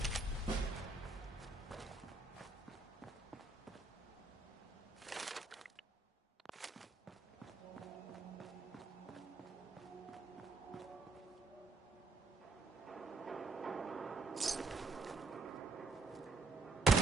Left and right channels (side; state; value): left; quieter; 3.8 dB